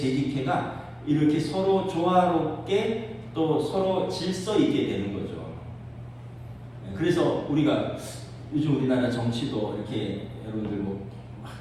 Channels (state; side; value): identical; both; correlation 1.00